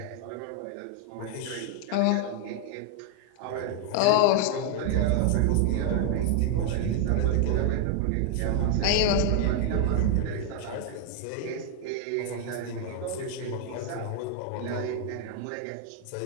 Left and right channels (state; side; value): different; both; correlation 0.00